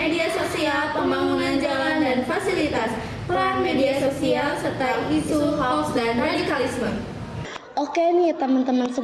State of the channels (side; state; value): both; identical; correlation 1.00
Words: sosial, pembangunan jalan dan fasilitas, peran media sosial, serta isu hoax dan radikalisme. Oke nih teman-teman